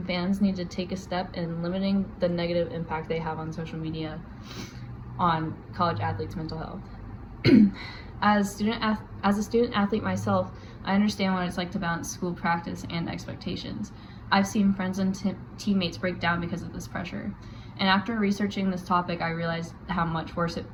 fans need to take a step in limiting the negative impact they have on social media on college athletes' mental health. As a student athlete myself, I understand what it's like to balance school practice and expectations. I've seen friends and teammates break down because of this pressure. And after researching this topic, I realized how much worse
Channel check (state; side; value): identical; both; correlation 1.00